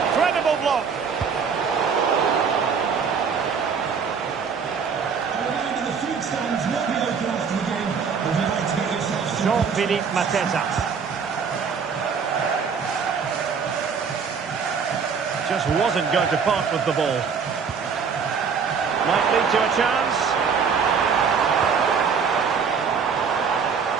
block. Jean-Philippe Mateta. Just wasn't going to part with the ball. Might lead to a chance.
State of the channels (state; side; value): quieter; left; 6.1 dB